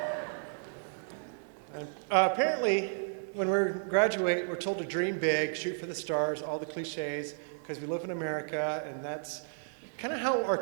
Apparently, when we graduate, we're told to dream big, shoot for the stars, all the cliches, because we live in America, and that's kind of how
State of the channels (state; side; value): silent; left; digital silence